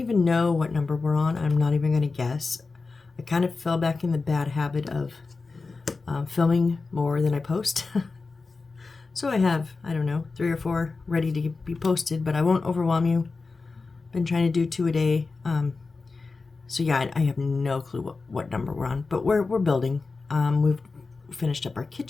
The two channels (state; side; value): quieter; right; 4.1 dB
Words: know what number we're on. I'm not even going to guess. I kind of fell back in the bad habit of filming more than I post. So I have, I don't know, 3 or 4 ready to be posted, but I won't overwhelm you. Been trying to do 2 a day. So yeah, I have no clue what number we're on, but we're building. We've finished up our